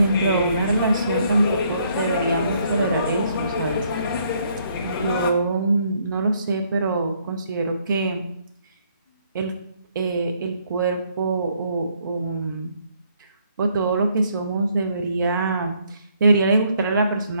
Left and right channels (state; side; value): inverted; both; correlation -0.68